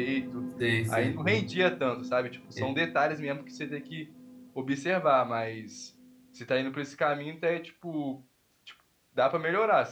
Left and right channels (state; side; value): identical; both; correlation 1.00